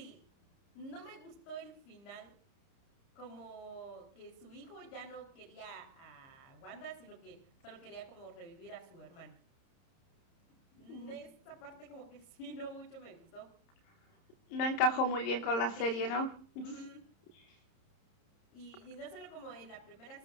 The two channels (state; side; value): late; right; 30 ms